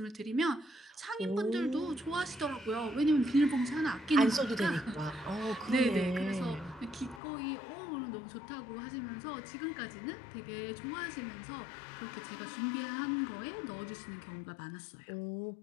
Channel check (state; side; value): drops out; right; at 7.2 s